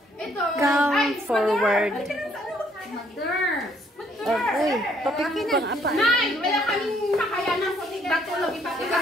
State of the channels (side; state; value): both; normal; correlation 0.66